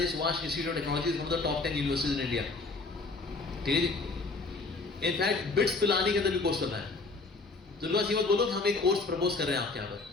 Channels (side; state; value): right; quieter; 3.7 dB